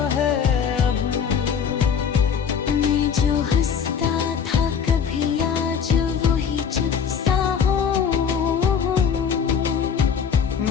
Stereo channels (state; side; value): quieter; right; 7.0 dB